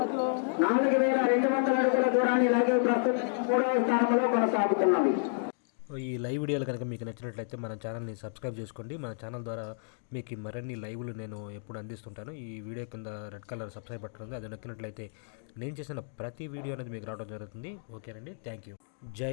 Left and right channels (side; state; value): right; silent; digital silence